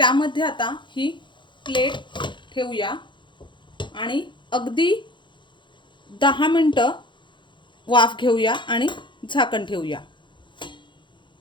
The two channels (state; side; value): late; right; 0.23 ms